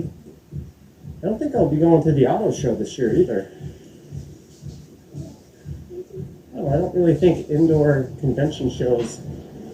I don't think I'll be going to the auto show this year either. Oh, I don't really think indoor convention shows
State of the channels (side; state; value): both; identical; correlation 1.00